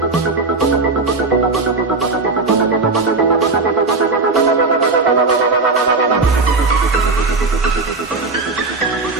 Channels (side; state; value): left; quieter; 3.7 dB